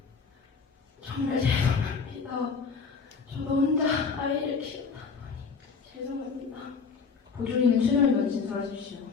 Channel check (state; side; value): quieter; right; 5.3 dB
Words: 정말 죄송합니다. 저도 혼자 아이를 키우다 보니 죄송합니다. 보조인은 출연위원 진술하십시오.